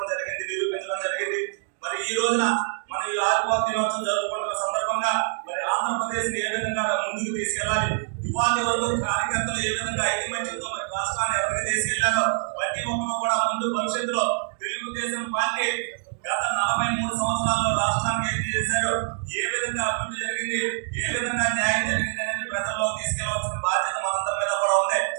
జరిగింది, నిరూపించడం జరిగింది. మరి ఈ రోజున మన ఈ ఆవిర్భావ దినోత్సవం జరుపుకుంటున్న సందర్భంగా మరి ఆంధ్రప్రదేశ్ ని ఏ విధంగా ముందుకు తీసుకెళ్లాలి, ఇవాళ వరకు కార్యకర్తలు ఏ విధంగా ఐకమత్యంతో మరి రాష్ట్రాన్ని ఎవరికి తీసుకెళ్లారో ప్రతి ఒక్కరు కూడా ముందు భవిష్యత్తులో తెలుగుదేశం పార్టీ గత 43 సంవత్సరాల్లో రాష్ట్రానికి ఏం చేశారు, ఏ విధంగా అభివృద్ధి జరిగింది, ఏ విధంగా న్యాయం జరిగింది అనేది ప్రజల్లో తీసుకెళ్లవలసిన బాధ్యత మనందరి మీద కూడా ఉంది.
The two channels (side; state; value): left; silent; digital silence